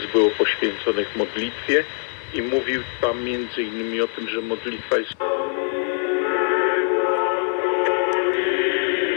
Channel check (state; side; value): silent; right; digital silence